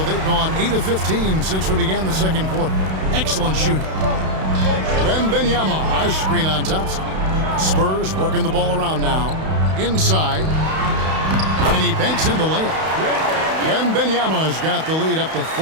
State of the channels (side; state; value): left; late; 32 ms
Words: they've gone 8 of 15 since we began the second quarter. Excellent shooting. Wembanyama, a screen on Thompson. Spurs working the ball around now. Inside. And he banks in the layup. Wembanyama's got the lead up to